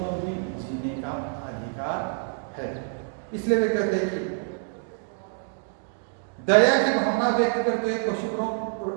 भी जीने का अधिकार है। इसलिए वे कहते हैं कि दया की भावना व्यक्त करते हुए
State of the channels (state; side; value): silent; left; 60 dB below the other